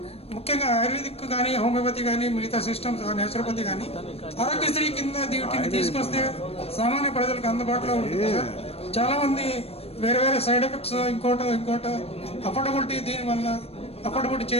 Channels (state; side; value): late; right; 0.29 ms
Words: ముఖ్యంగా ఆయుర్వేదిక్ కానీ హోమియోపతి కానీ మిగతా సిస్టమ్స్ నేచురోపతి కానీ ఆరోగ్యశ్రీ కింద వీటిని తీసుకొస్తే సామాన్య ప్రజలకు అందుబాటులో ఉంటుంది సార్. చాలామంది వేరే వేరే సైడ్ ఎఫెక్ట్స్ ఇంకోటో అఫోర్డబిలిటీ దీనివల్ల అఫోర్డబిలిటీ